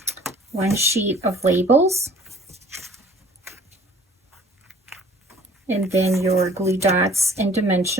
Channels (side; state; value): both; normal; correlation 0.52